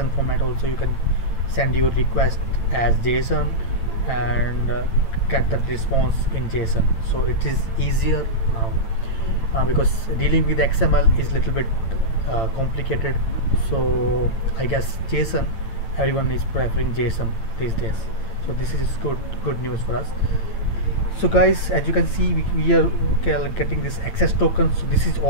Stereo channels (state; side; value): late; right; 8.9 ms